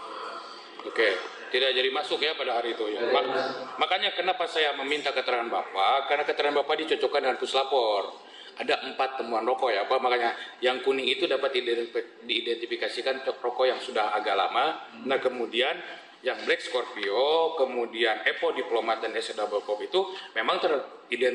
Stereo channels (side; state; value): both; identical; correlation 1.00